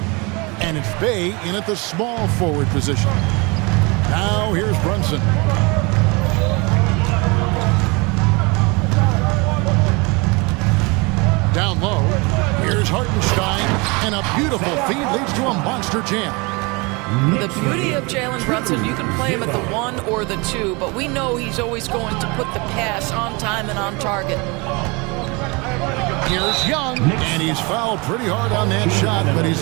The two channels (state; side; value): quieter; left; 27.8 dB